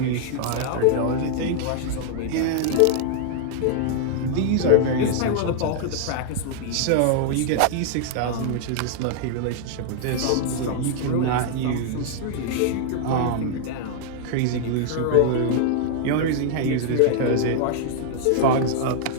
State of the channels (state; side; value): different; both; correlation -0.01